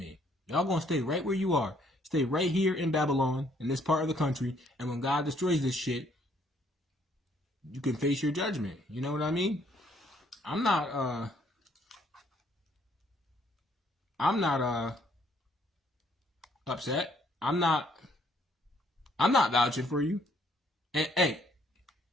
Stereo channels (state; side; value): normal; both; correlation 0.66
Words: Y'all gonna stay right where you are. Stay right here in Babylon, in this part of the country. And when God destroys this shit, you can face your judgment. You know what I mean? I'm not upset. I'm not vouching for you. And hey,